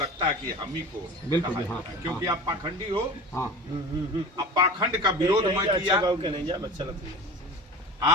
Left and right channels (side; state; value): both; normal; correlation 0.35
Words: है कि हम ही को बिल्कुल, कहा हाँ, जाता है, क्योंकि आप पाखंडी हो। हाँ अब पाखंड का विरोध मैं किया।